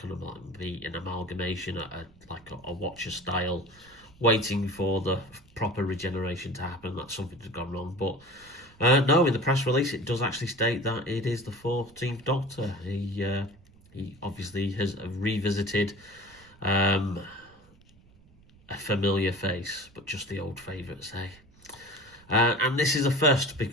of like be an amalgamation, like a Watcher style, waiting for the proper regeneration to happen. That something had gone wrong. But no, in the press release it does actually state that it is the 14th Doctor. He obviously has revisited a familiar face, but just the old favourites, eh? And this is a first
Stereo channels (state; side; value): noise; right; rumble, 27 dB below the sound